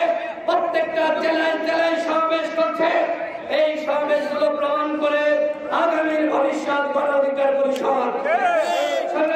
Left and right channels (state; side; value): identical; both; correlation 1.00